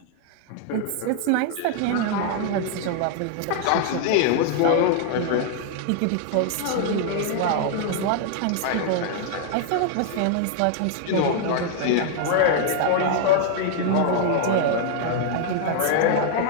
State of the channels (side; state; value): both; different; correlation 0.00